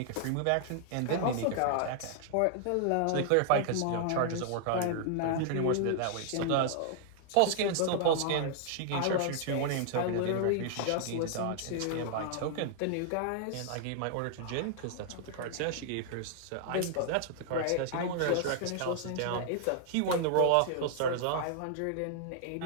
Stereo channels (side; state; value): both; different; correlation -0.01